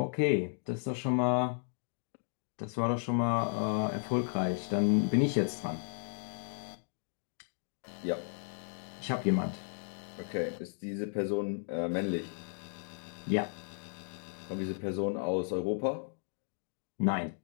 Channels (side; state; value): right; silent; digital silence